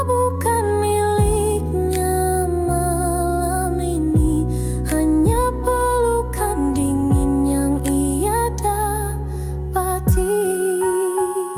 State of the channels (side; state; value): both; identical; correlation 1.00